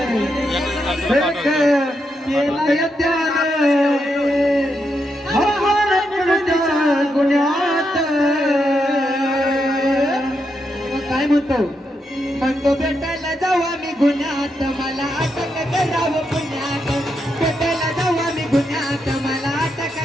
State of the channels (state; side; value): normal; both; correlation 0.82